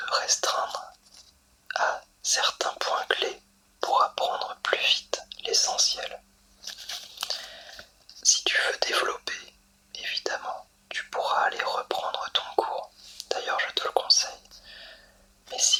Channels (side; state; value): both; identical; correlation 1.00